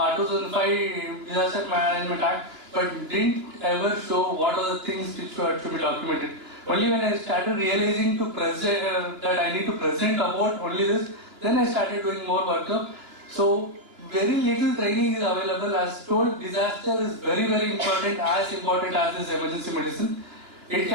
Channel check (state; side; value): late; left; 2.8 ms